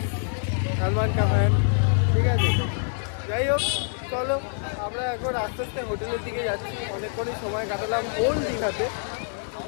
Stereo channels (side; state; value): right; silent; digital silence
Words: সালমান কা ফ্যান, ঠিক আছে। যাই হোক, চলো আমরা এখন আস্তে আস্তে হোটেলের দিকে যাচ্ছি। অনেকক্ষণই সময় কাটালাম ওল্ড দীঘাতে,